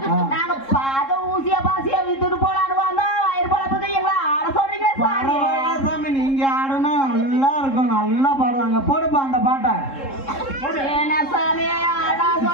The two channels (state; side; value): late; right; 3.7 ms